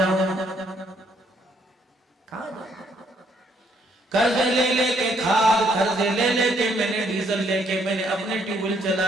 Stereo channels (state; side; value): normal; both; correlation 0.69